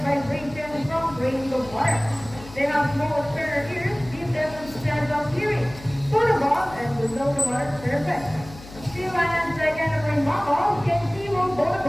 vibrations from grains of water. They have small external ears, give them a sense of hearing, both above and below the water surface. Sea lions, like any marine mammals, can see both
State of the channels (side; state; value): left; noise; hum, 17 dB below the sound